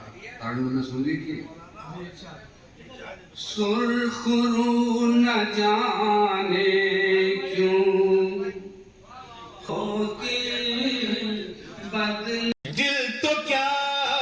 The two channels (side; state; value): both; identical; correlation 1.00